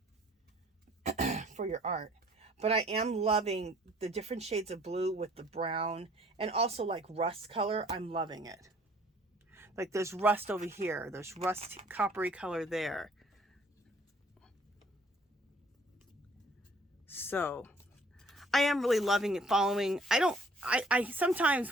for your art. But I am loving the different shades of blue with the brown, and also like rust color. I'm loving it. Like there's rust over here. There's rust coppery color there. So I am really loving it, following. I sometimes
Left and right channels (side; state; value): both; normal; correlation 0.57